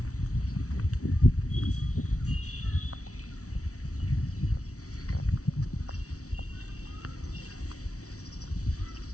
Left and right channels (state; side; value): late; right; 0.65 ms